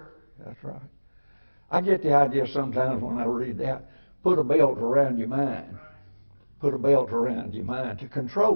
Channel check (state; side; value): inverted; both; correlation -1.00